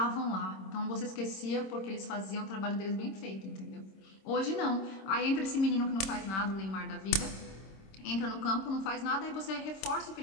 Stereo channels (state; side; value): late; right; 26 ms